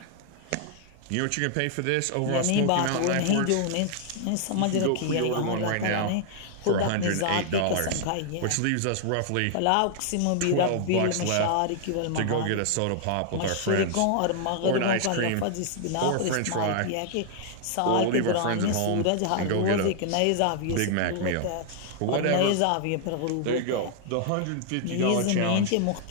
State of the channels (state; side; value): different; both; correlation 0.00